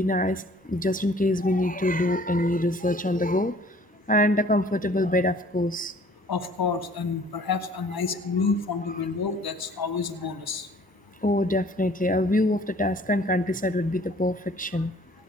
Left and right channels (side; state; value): both; normal; correlation 0.54